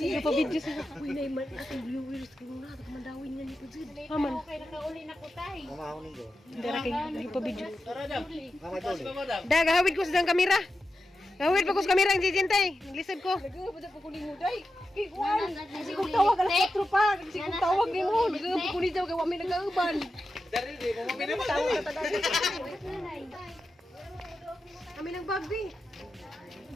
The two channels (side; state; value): both; normal; correlation 0.90